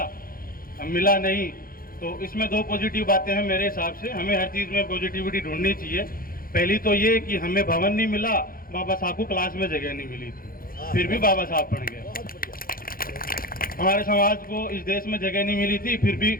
मिला नहीं, तो इसमें दो पॉजिटिव बातें हैं मेरे हिसाब से। हमें हर चीज़ में पॉजिटिविटी ढूंढनी चाहिए। पहली तो ये कि हमें भवन नहीं मिला, बाबा साहब को क्लास में जगह नहीं मिली थी, फिर भी बाबा साहब बन गए। हमारे समाज को इस देश में जगह नहीं मिली थी, फिर भी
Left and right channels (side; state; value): right; late; 0.42 ms